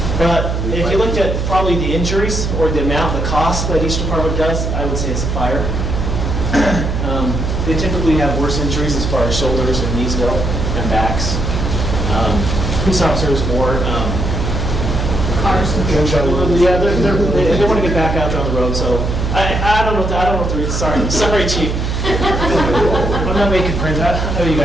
But if you looked at probably the injuries or the amount, the cost that each department does, I would say it's a fire. They typically have worse injuries as far as shoulders and knees go and backs. Police officers more. Cars. Yeah, they want to get back out there on the road, so I don't know what the reason. Sorry, Chief. I'm not making friends. I know you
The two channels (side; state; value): right; noise; hum, 1 dB below the sound